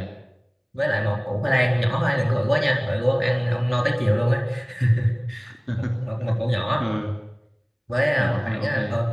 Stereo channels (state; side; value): identical; both; correlation 1.00